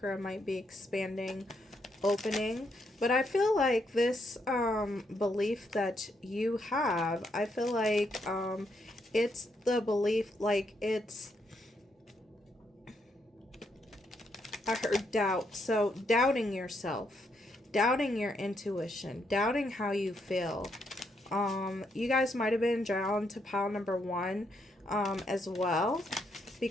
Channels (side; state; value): both; normal; correlation 0.77